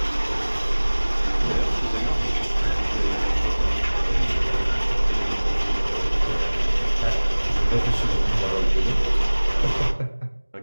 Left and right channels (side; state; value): both; inverted; correlation -1.00